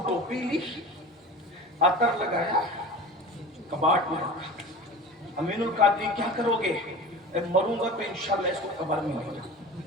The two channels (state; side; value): normal; both; correlation 0.35